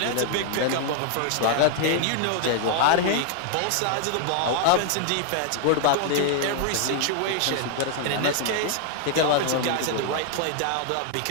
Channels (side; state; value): both; different; correlation 0.00